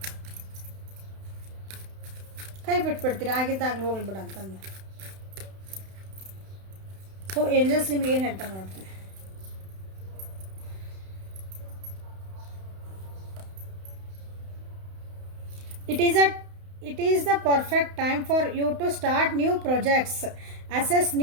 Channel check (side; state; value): left; late; 31 ms